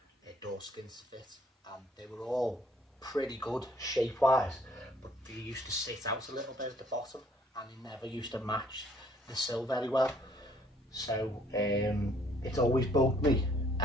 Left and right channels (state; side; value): normal; both; correlation 0.62